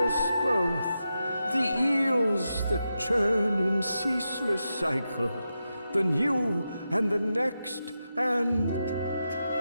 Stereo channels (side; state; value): both; inverted; correlation -0.89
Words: both, the eels that churn in ceaseless cycle, the new and the next, and...